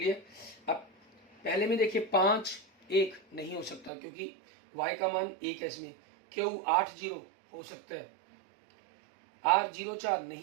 अब पहले में देखिए 5 1 नहीं हो सकता क्योंकि y का मान 1 है इसमें। Q 8 0 हो सकता है। R 0 4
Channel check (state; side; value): drops out; left; at 3.9 s